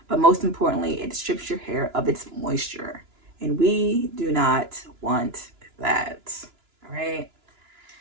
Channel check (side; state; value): left; late; 2.9 ms